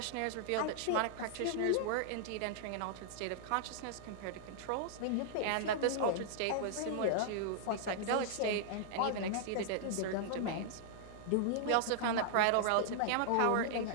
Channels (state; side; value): different; both; correlation -0.01